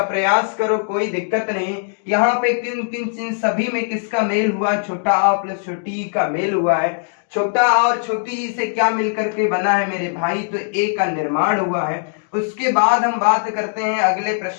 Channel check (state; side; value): silent; right; 65 dB below the other